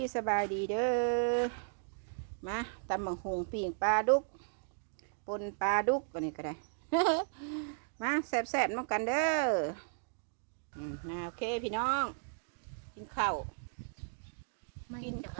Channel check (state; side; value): silent; left; digital silence